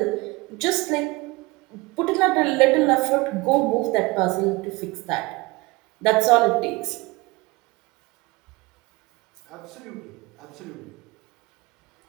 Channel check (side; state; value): left; quieter; 23.3 dB